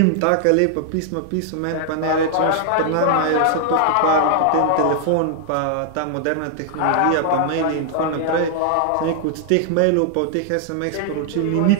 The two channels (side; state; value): both; different; correlation -0.01